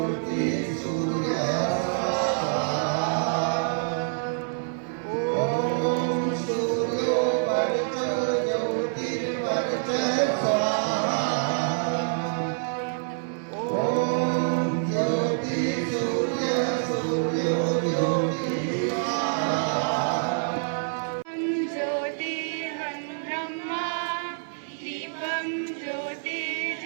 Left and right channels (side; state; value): left; silent; 60 dB below the other